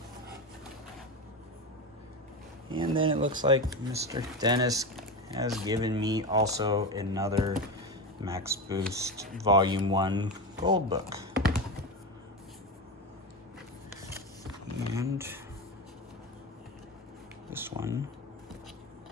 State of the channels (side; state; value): both; normal; correlation 0.20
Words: And then it looks like Mr. Dennis has given me also another MaxBoost Volume 1 Gold Book. And this one